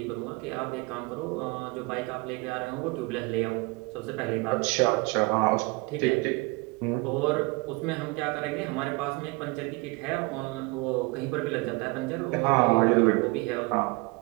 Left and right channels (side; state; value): left; quieter; 27.0 dB